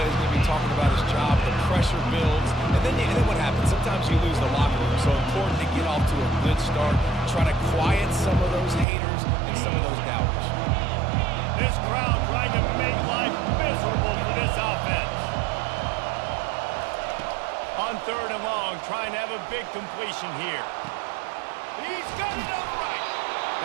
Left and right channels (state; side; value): drops out; left; at 8.8 s